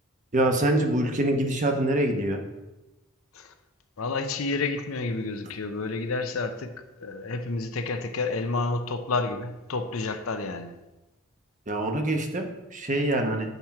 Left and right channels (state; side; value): normal; both; correlation 0.36